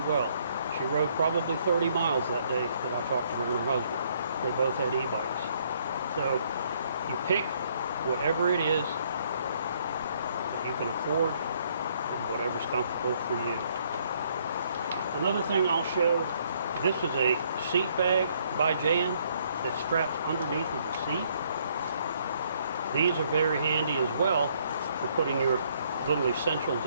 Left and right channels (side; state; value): both; inverted; correlation -0.67